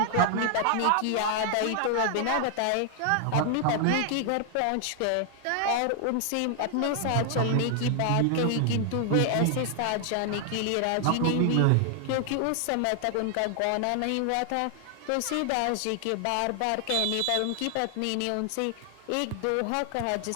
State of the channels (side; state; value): both; different; correlation 0.00